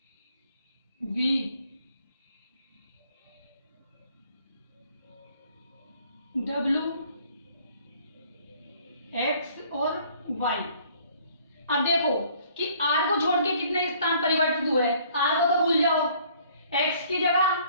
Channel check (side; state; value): both; inverted; correlation -0.58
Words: V W x और वाई। अब देखो कि आर को छोड़ के कितने स्थान परिवर्तित हुए। आर को तो भूल जाओ, एक्स की